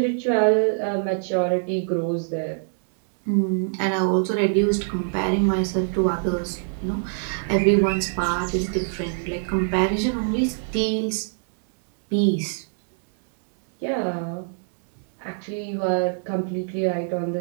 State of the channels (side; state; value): left; silent; digital silence